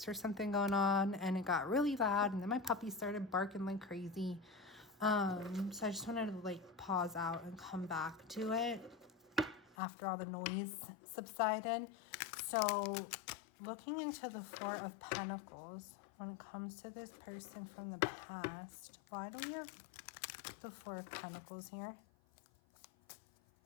or something going on, and it got really loud, and then my puppy started barking like crazy. So I just wanted to like pause out and come back to it after all the noise subsided. So looking into the 4 of Pentacles, when it comes to this person from the past, why do we have the 4 of Pentacles here?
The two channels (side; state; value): right; drops out; at 9.8 s